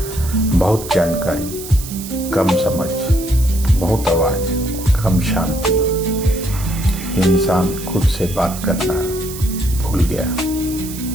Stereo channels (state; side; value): noise; right; hiss, 12 dB below the sound